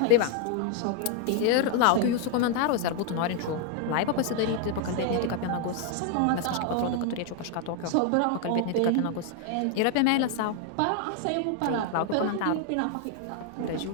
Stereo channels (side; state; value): both; different; correlation 0.00